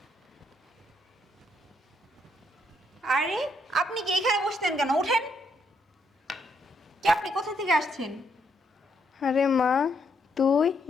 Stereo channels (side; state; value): both; normal; correlation 0.74